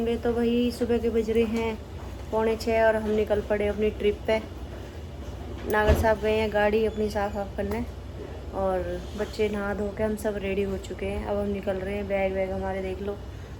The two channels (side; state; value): both; identical; correlation 1.00